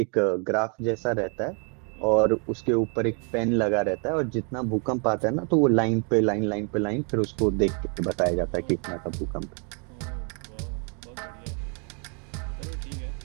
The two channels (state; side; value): quieter; left; 38.1 dB